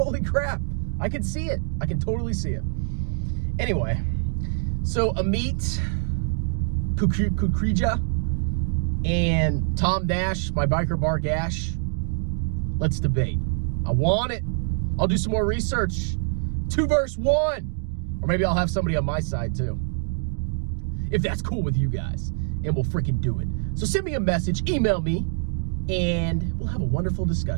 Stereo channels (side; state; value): left; silent; 62 dB below the other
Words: crap. I can see it. I can totally see it. Anyway, so Amit, Kukreja, and Tom Nash, my biker bar gash, let's debate. I want it. I'll do some more research. 2 versus 1. Or maybe I'll have somebody on my side too, if that's cool with you guys, and we'll freaking do it. So send me a message, email me, and we'll have a wonderful